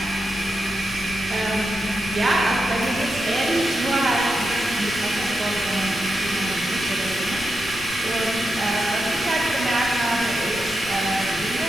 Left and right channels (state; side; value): noise; left; rumble, 18 dB below the sound